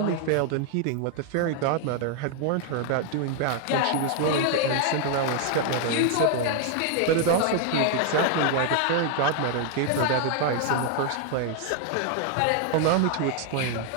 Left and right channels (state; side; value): different; both; correlation 0.00